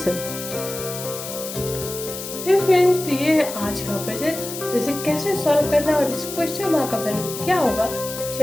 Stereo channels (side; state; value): left; noise; hiss, 8 dB below the sound